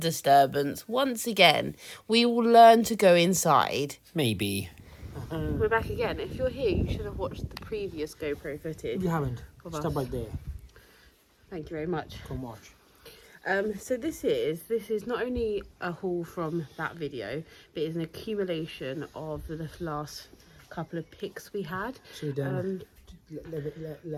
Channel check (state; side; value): identical; both; correlation 1.00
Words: disturbance. Once again, we will learn to go inside. Maybe. We're back again. If you're here, you should have watched the previous GoPro footage. You haven't. Stop right there. Thank you very much. Come watch. So this is not only a haul from that video, but it's an accumulation of the last couple of picks we had. So